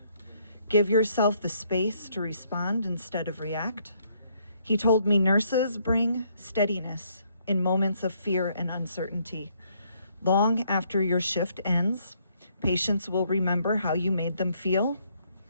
Give yourself the space to respond instead of react. He told me nurses bring steadiness in moments of fear and uncertainty. Long after your shift ends, patients will remember how you made them feel.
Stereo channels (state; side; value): inverted; both; correlation -0.69